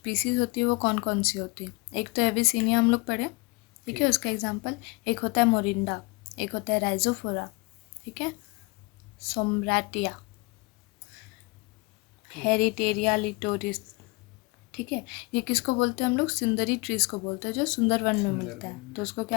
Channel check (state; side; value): quieter; right; 26.7 dB